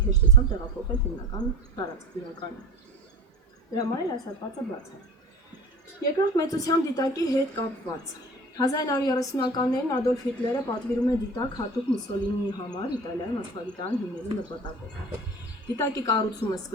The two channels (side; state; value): both; normal; correlation 0.38